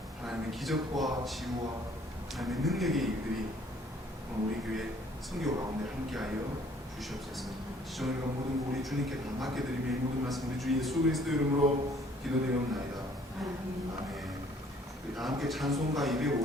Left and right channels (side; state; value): both; normal; correlation 0.59